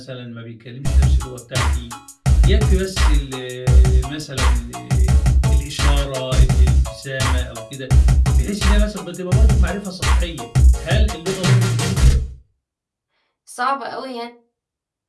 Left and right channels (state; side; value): identical; both; correlation 1.00